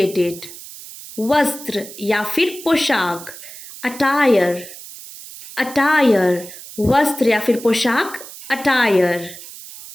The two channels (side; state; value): right; noise; hiss, 15 dB below the sound